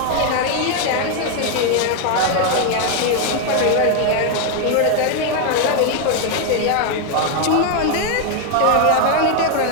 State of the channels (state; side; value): different; both; correlation 0.01